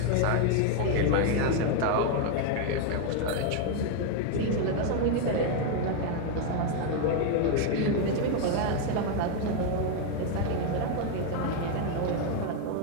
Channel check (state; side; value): different; both; correlation 0.01